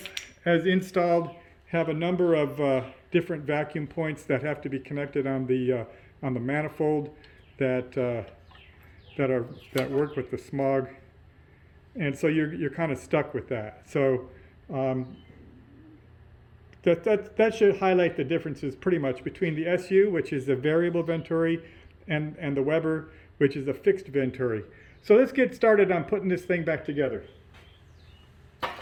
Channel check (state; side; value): identical; both; correlation 1.00